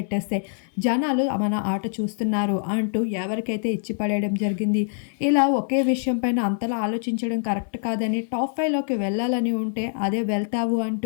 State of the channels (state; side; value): silent; right; 62 dB below the other